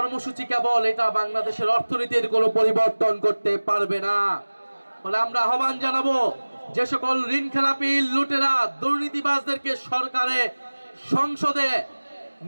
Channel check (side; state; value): both; inverted; correlation -1.00